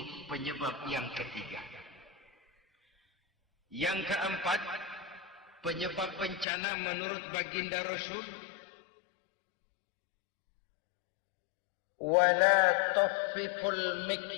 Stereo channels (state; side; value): drops out; right; at 6.5 s